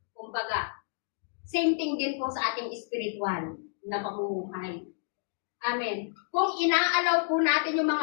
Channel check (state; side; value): silent; right; digital silence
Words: kumbaga. Same thing din po sa ating spiritual na pamumuhay. Amen. Kung inaalaw po natin yung